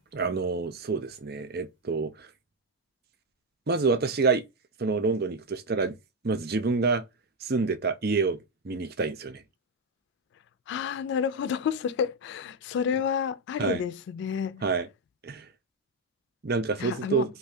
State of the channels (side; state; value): both; normal; correlation 0.06